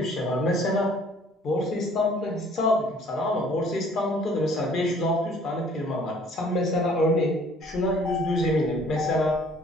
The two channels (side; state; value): both; normal; correlation 0.56